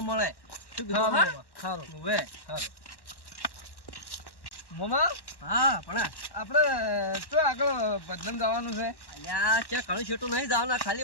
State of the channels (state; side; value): late; right; 1.1 ms